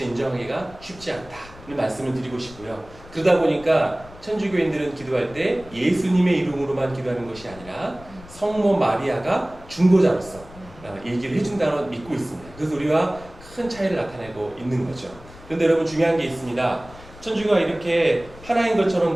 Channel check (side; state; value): left; noise; rumble, 20 dB below the sound